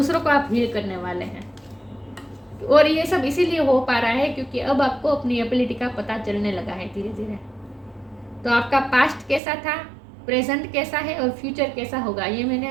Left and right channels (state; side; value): drops out; left; at 9.4 s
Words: को आप हील करने वाले हैं। और ये सब इसीलिए हो पा रहा है क्योंकि अब आपको अपनी एबिलिटी का पता चलने लगा है धीरे धीरे। तो आपका पास्ट कैसा था, प्रेजेंट कैसा है और फ्यूचर कैसा होगा, ये